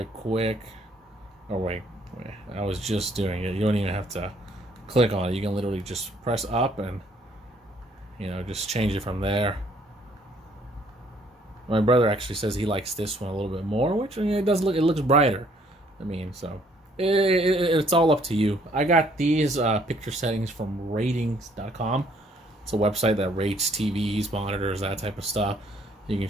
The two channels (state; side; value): normal; both; correlation 0.63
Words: quick. Oh wait, I was just doing it. You don't even have to click on it. You can literally just press up and, you know, just change it from there. My brother actually says he likes this one a little bit more, which, I mean, it looks brighter. I mean, so it's all up to you. I got these picture settings from ratings.com. It's a website that rates TVs, monitors, that type of stuff. You can